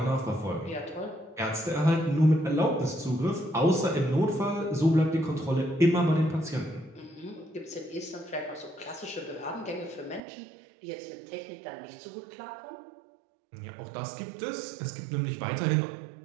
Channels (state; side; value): drops out; left; at 10.2 s